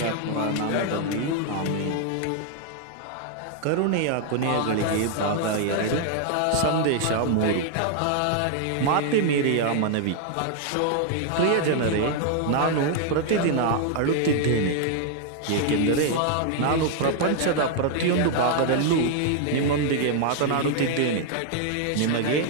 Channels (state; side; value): different; both; correlation 0.00